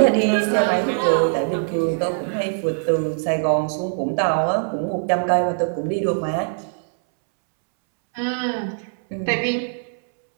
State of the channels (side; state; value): left; silent; 64 dB below the other